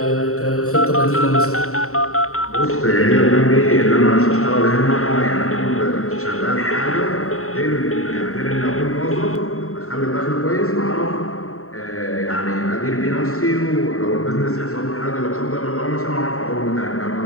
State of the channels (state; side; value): late; right; 0.64 ms